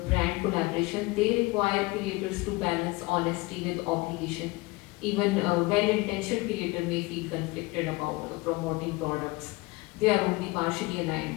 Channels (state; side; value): quieter; right; 22.9 dB